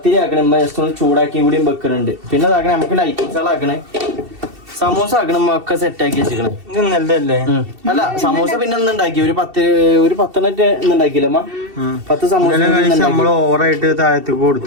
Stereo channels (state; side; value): late; left; 2.7 ms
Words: ആക്കണേ. ഇമ്മ ജസ്റ്റ് ഒന്ന് ചൂടാക്കിയും കൂടിയും വെക്കുന്നുണ്ട്. പിന്നെ ഇതാക്കണേ നമുക്ക് ലൈറ്റിങ്സുകളാക്കണേ. സമൂസ ആക്കണം ഒക്കെ സെറ്റ് ആക്കി വെച്ചിക്കണം. നല്ലതല്ലേ? അല്ല സമൂസ പിന്നെ ഉണ്ടാക്കി ഒരു 10 ഉണ്ടാക്കിയില്ല അമ്മ. 10 സമൂസ നമ്മള് ഓവറായിട്ട് താഴത്തേക്ക്